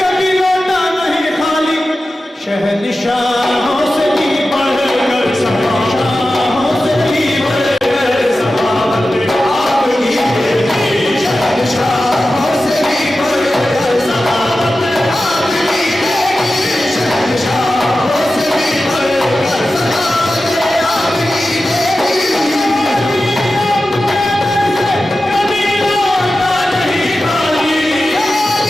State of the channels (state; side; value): normal; both; correlation 0.93